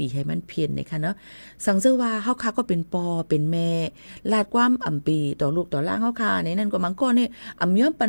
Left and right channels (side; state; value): both; inverted; correlation -1.00